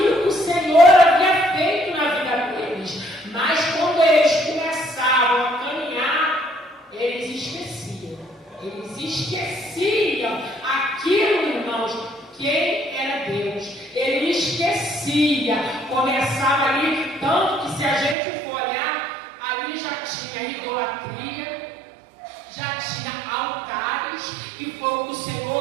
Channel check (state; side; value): drops out; left; at 18.2 s